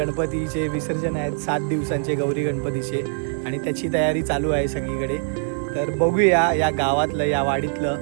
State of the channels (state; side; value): silent; left; 64 dB below the other